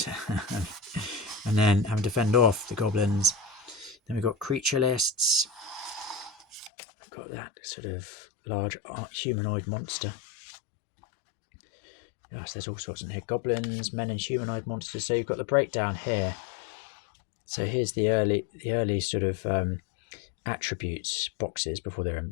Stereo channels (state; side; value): drops out; right; at 6.7 s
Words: And then having to fend off the goblins. Then we've got creature lists. I've got that sort of large humanoid monster. Yes, there's all sorts in here. Goblins, men and humanoid monsters. So you've got the breakdown here. So here's the early sort of attributes boxes before they're in